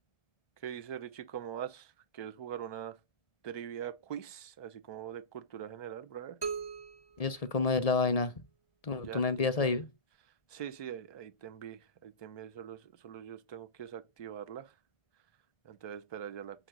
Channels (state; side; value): late; right; 1.7 ms